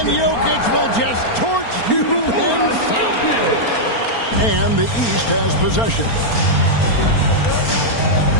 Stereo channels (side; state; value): right; late; 4.4 ms